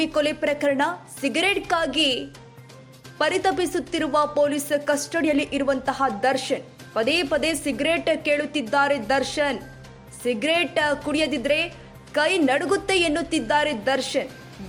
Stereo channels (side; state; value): both; identical; correlation 1.00